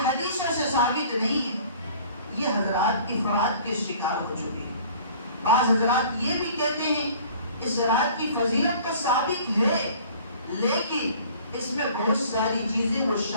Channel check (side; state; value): both; inverted; correlation -0.49